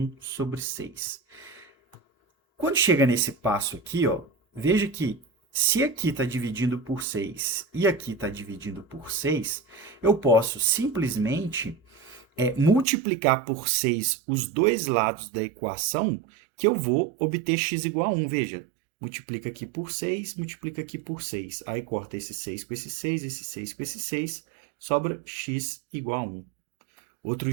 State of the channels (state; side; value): drops out; left; at 12.9 s